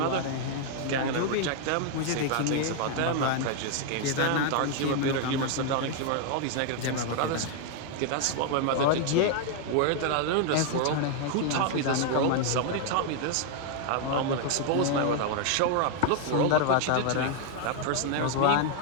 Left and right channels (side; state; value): both; different; correlation 0.00